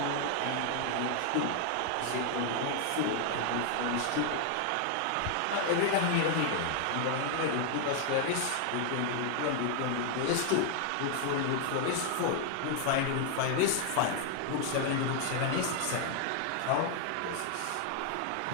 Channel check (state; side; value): different; both; correlation 0.00